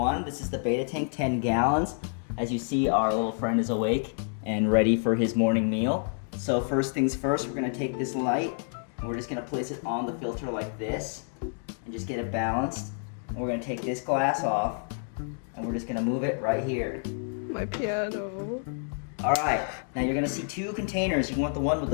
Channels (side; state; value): right; silent; 59 dB below the other